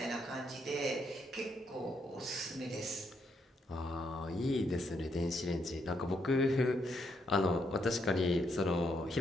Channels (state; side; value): normal; both; correlation 0.76